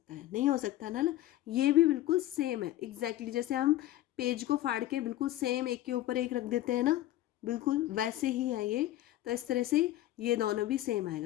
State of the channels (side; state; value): right; quieter; 14.6 dB